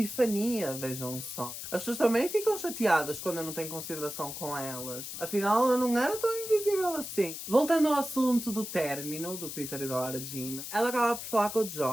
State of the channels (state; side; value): noise; left; hiss, 8 dB below the sound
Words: vejam só. As pessoas também ficam chateadas quando eu não tenho consideração com elas. Afinal, ela não era tão invisível assim. Voltando ao assunto do término do Peter e da Lara Jean, ela acaba por falar com o